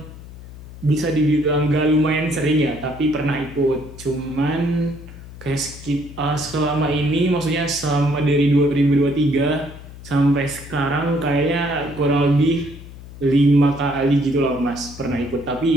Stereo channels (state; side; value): noise; left; hum, 16 dB below the sound